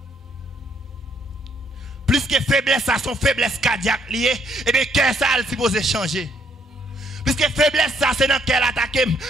Plus que faiblesse ça son faiblesse cardiaque liée, et bien cœur ça il supposé changer. Plus que faiblesse ça c'est dans cœur attaquer.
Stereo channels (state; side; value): normal; both; correlation 0.69